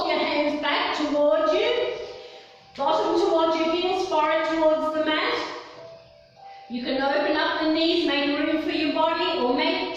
your hands back towards you. Bottom towards your heels, forehead towards the mat. You can open up the knees, make room for your body, or make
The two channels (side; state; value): both; identical; correlation 1.00